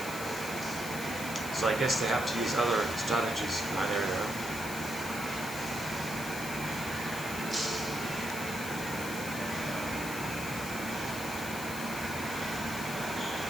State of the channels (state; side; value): noise; left; hiss, 9 dB below the sound